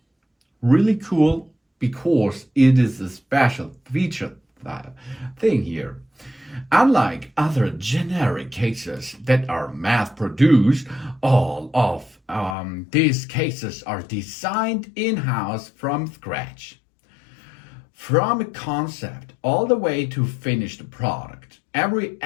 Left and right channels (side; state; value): right; drops out; at 12.6 s